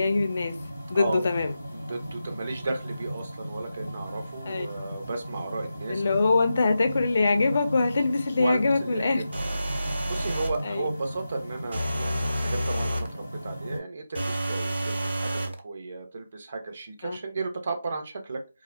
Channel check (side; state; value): both; inverted; correlation -0.90